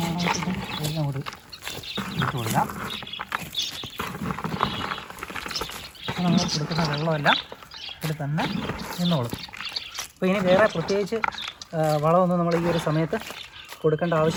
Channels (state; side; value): identical; both; correlation 1.00